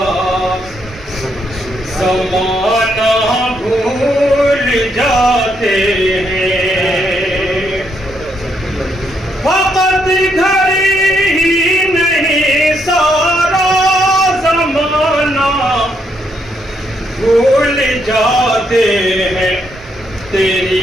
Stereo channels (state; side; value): normal; both; correlation 0.76